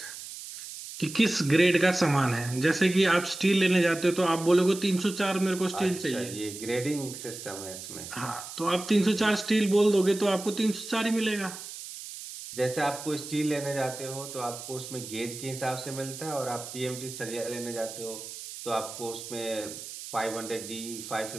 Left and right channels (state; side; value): noise; right; hiss, 11 dB below the sound